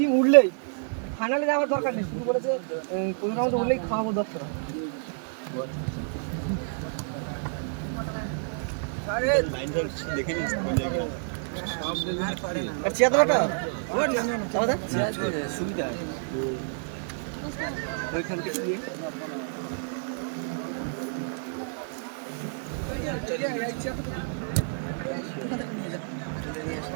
উঠলেই ফাইনালে যাওয়ার দরকার নেই শুধু বলেছে কোন রাউন্ড উঠলেই খাওয়াবো 10 টাকা আরে লাইন দেখে নিস কোন জায়গায় সব দেখুন আর চেয়ারটা চাওদা সুবিধা ওইখান থেকে দিয়ে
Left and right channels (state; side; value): silent; left; digital silence